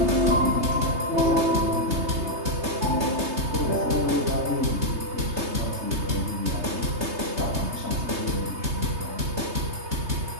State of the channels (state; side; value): late; left; 3.3 ms